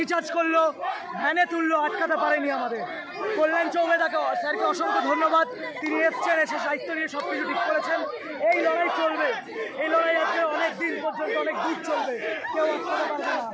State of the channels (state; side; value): identical; both; correlation 1.00